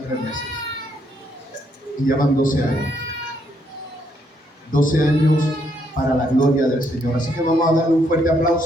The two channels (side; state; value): both; normal; correlation 0.73